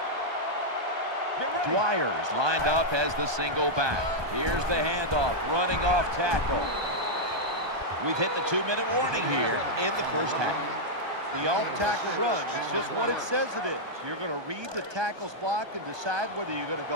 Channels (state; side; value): late; left; 1.2 ms